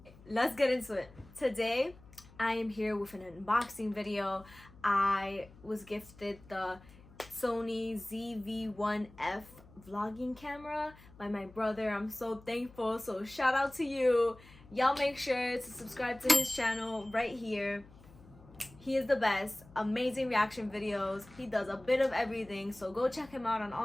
Let's get into it. Today I am here with an unboxing video. I was gifted the Sony ZV-1F vlogging camera by my brother. I'm so thankful, so shout out to you. Y'all make sure to subscribe to his channel right here. He is the best. Amazing reaction videos. He does a bit of everything, so go check him out on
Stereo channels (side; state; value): left; noise; hum, 22 dB below the sound